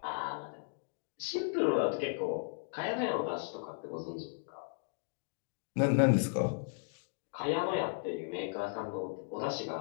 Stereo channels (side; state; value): right; silent; digital silence